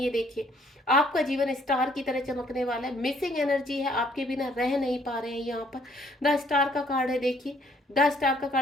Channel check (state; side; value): normal; both; correlation 0.65